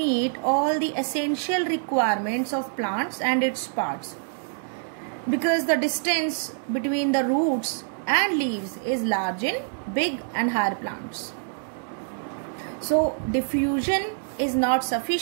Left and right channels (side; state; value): left; silent; digital silence